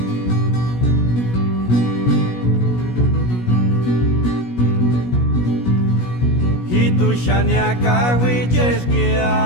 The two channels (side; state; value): right; late; 17 ms